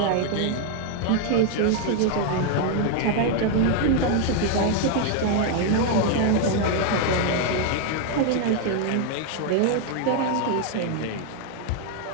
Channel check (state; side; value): different; both; correlation 0.00